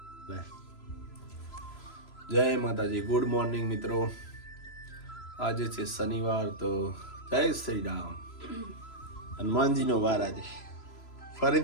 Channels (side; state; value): right; late; 3.0 ms